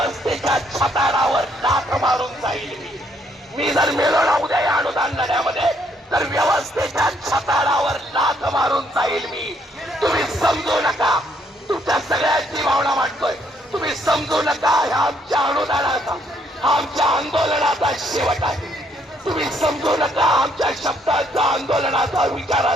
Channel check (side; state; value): both; normal; correlation 0.70